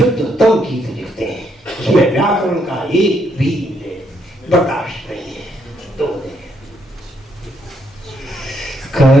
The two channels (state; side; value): normal; both; correlation 0.74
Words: गीत लिखते हैं, उसमें व्याकरण का एक भी बर्दाश्त नहीं है। तो